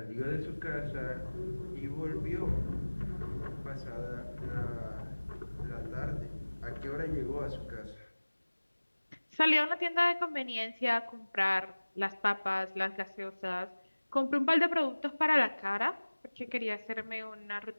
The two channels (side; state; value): both; inverted; correlation -1.00